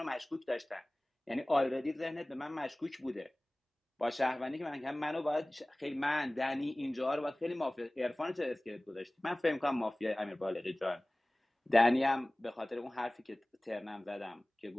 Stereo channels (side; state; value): both; normal; correlation 0.98